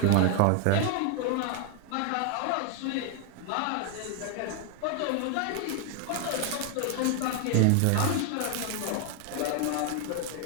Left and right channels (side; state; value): both; different; correlation 0.00